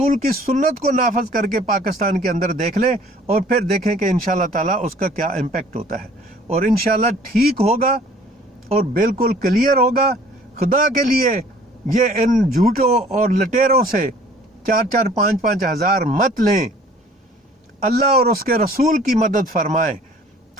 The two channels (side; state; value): both; normal; correlation 0.53